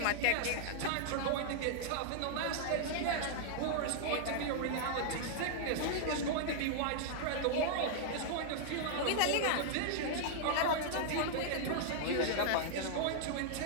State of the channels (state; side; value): different; both; correlation -0.01